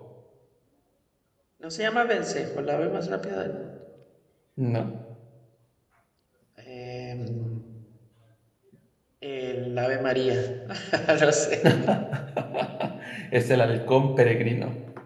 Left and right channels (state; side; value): identical; both; correlation 1.00